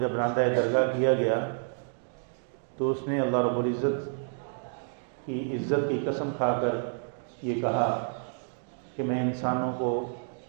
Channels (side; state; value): left; silent; 57 dB below the other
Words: جب راندہ درگاہ کیا گیا تو اس نے اللہ رب العزت کی عزت کی قسم کھا کر یہ کہا کہ میں انسانوں کو